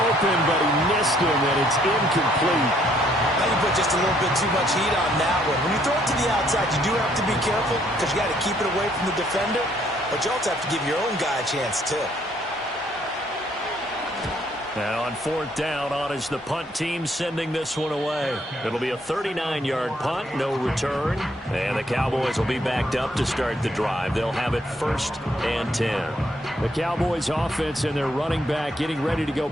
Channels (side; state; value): both; normal; correlation 0.68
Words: open, but he missed him, and it's incomplete. Now you put just a little bit too much heat on that one. When you throw it to the outside, you do have to be careful because you got to keep it away from the defender, but you also have to give your own guy a chance, too. Now on 4th down, on is the punt team sending this one away. It'll be a 39-yard punt, no return. And the Cowboys will be backed up to start the drive. They'll have it 1st and 10. The Cowboys offense and their running back getting ready to go